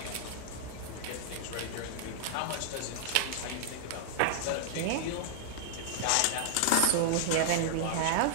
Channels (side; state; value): both; different; correlation -0.01